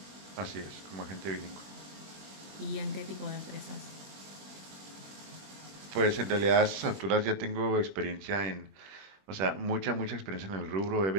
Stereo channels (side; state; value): left; late; 20 ms